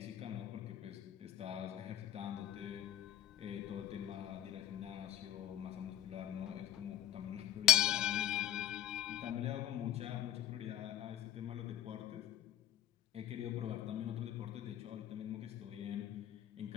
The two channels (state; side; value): quieter; right; 11.6 dB